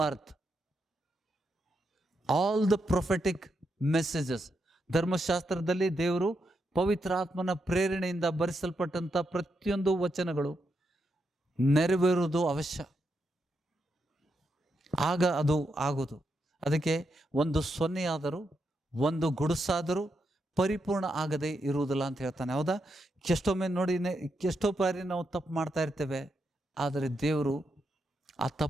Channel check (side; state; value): both; normal; correlation 0.83